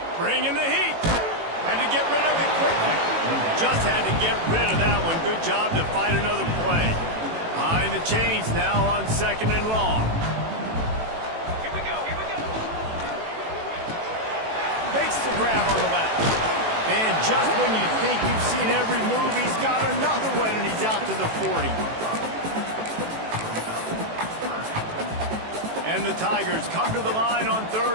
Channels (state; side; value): late; left; 18 ms